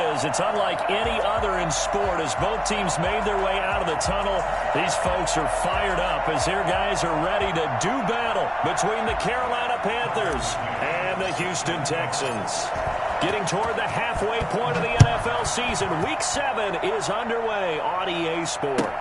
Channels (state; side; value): identical; both; correlation 1.00